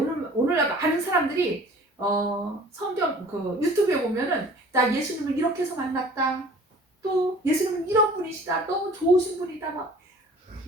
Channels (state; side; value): normal; both; correlation 0.48